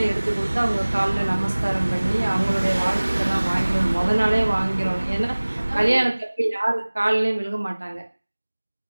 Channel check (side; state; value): both; inverted; correlation -1.00